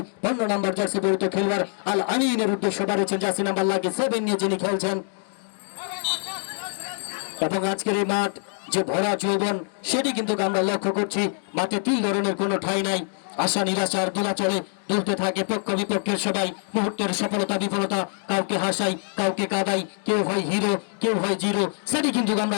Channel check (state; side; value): silent; right; 56 dB below the other